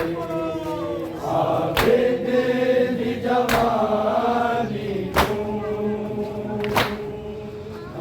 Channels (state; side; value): identical; both; correlation 1.00